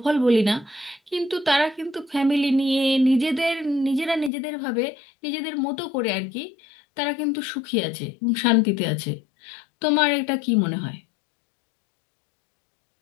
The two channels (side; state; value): right; drops out; at 4.3 s